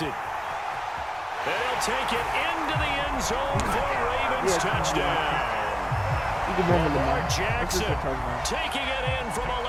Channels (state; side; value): identical; both; correlation 1.00